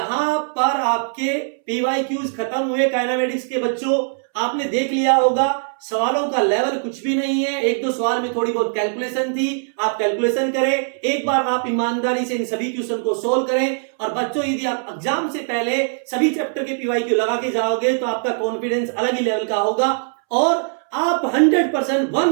पर आपके PYQs खत्म हुए काइनेमेटिक्स के बच्चों। आपने देख लिया होगा सवालों का लेवल कुछ भी नहीं है, एक दो सवाल में थोड़ी बहुत कैलकुलेशन थी, आप कैलकुलेशन करें, एक बार आप ईमानदारी से इन सभी क्वेश्चन को सोल्व करें। और बच्चों यदि आप एग्जाम से पहले सभी चैप्टर के पीवाईक्यू लगा के जाओगे तो आपका कॉन्फिडेंस अलग ही लेवल का होगा और आप 100%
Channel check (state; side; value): silent; left; 65 dB below the other